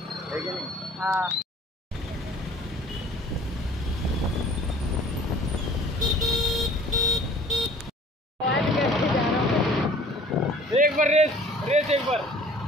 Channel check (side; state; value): both; normal; correlation 0.50